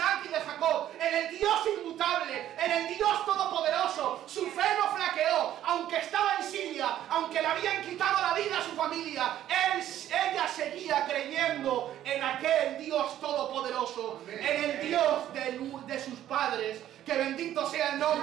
y de Jacob, en el Dios inmutable, en el Dios todopoderoso. Su fe no flaqueó, aunque estaba en Siria, aunque le habían quitado la vida a su familia. Ella seguía creyendo en aquel Dios todopoderoso, en el Dios de sus padres. Que bendito sea el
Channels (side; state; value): left; quieter; 12.0 dB